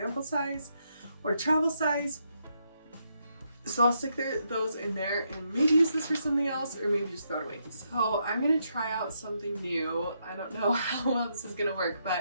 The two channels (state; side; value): inverted; both; correlation -0.78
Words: size or travel size. So I'll stick those in there and maybe use this for something else, or maybe just throw it away. So I'm going to try out something new. I don't know how well this is going to work,